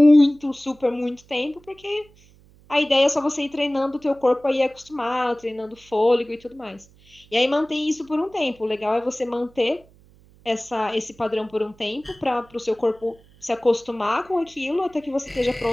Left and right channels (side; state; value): right; noise; hum, 28 dB below the sound